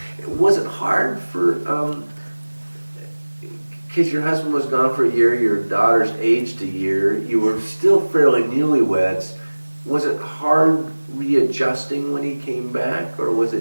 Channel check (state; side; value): inverted; both; correlation -1.00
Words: Was it hard for, because your husband was gone for a year, your daughter's aged a year, you were still fairly newlyweds. Was it hard readjusting when he came back, or was